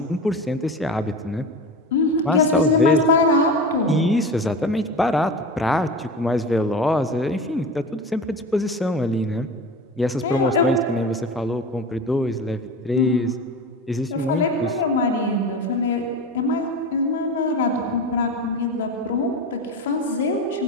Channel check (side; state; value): both; normal; correlation 0.29